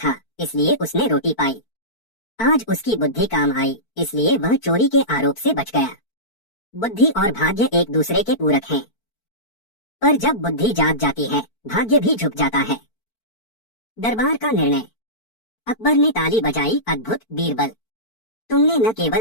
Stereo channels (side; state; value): right; late; 4.5 ms